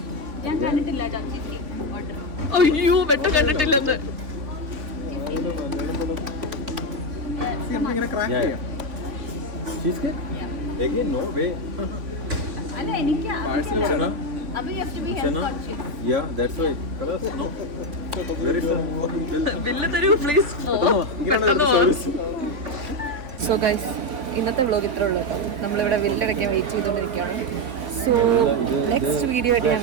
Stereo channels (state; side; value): late; left; 3.5 ms